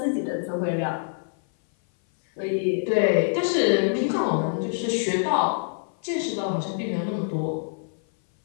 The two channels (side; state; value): right; silent; 58 dB below the other